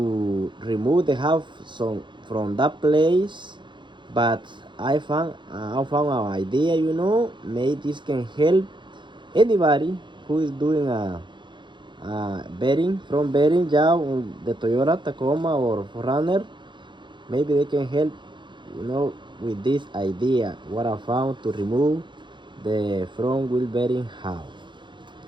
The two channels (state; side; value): late; left; 0.23 ms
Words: remove the hub from that place, but I found an idea, maybe this can help anybody who is doing a bearing job on the Toyota Tacoma or 4runner. Maybe they can help, with this idea what I found to remove the front wheel bearing hub.